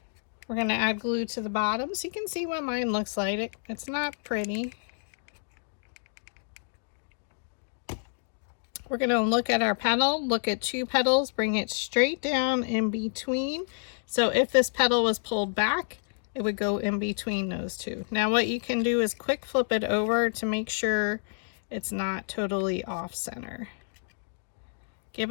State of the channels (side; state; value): right; silent; digital silence